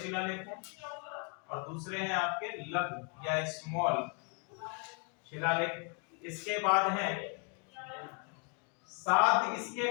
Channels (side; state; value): right; quieter; 37.1 dB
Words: हैं, और दूसरे हैं आपके लघु या स्मॉल शिलालेख। इसके बाद है 7